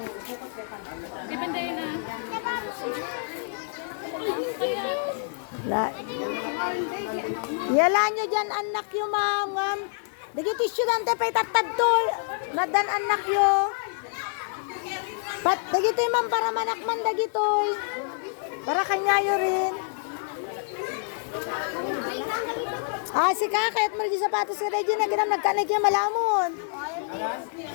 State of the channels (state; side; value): silent; right; digital silence